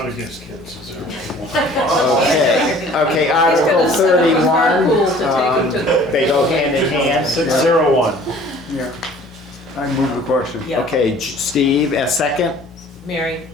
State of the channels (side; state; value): both; normal; correlation 0.51